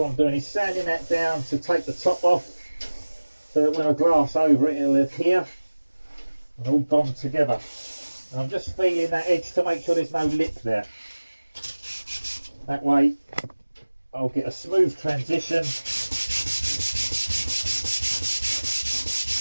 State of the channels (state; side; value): inverted; both; correlation -1.00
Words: I'm doing is sanding that down to take the top off, so that when I glass over it, it'll adhere and all bond together. And I'm just feeling that edge to make sure there's no lip there. That way I'll get a smooth transition.